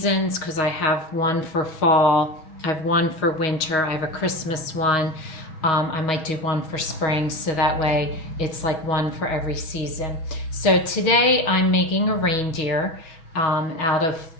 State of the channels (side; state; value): right; late; 6.3 ms